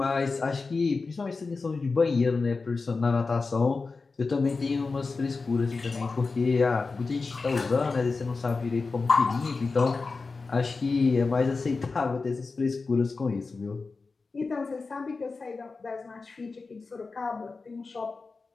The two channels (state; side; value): quieter; right; 4.1 dB